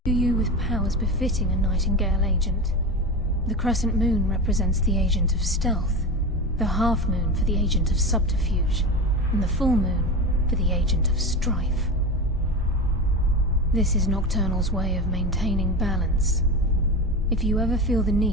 imbue you with powers befitting a Nightingale agent. The crescent moon represents the agent of stealth, the half moon for the agent of subterfuge, and the full moon for the agent of strife. This is Nocturnal's way of maintaining balance. If you ever feel the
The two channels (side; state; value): both; normal; correlation 0.24